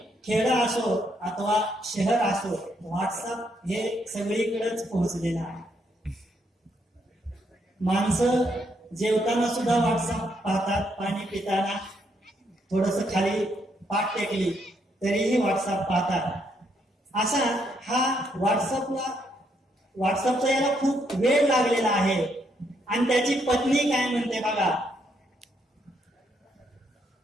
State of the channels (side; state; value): both; normal; correlation 0.75